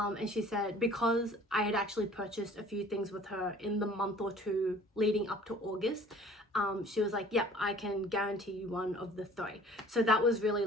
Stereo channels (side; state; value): both; normal; correlation 0.50